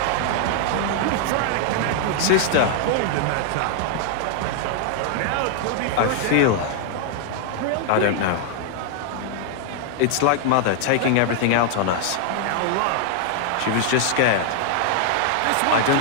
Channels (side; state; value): both; different; correlation 0.00